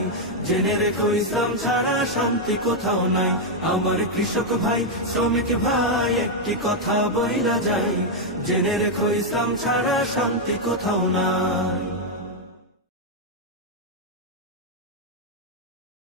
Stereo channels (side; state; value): both; normal; correlation 0.00